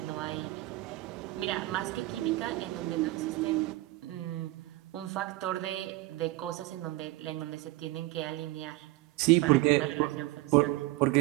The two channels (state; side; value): quieter; left; 18.8 dB